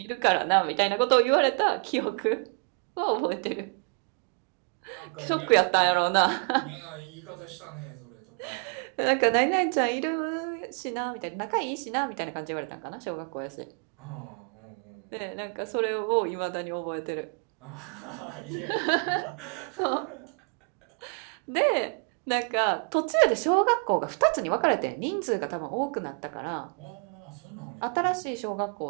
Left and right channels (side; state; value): left; quieter; 39.0 dB